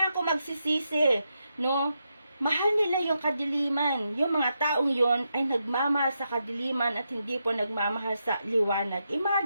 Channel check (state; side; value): inverted; both; correlation -0.84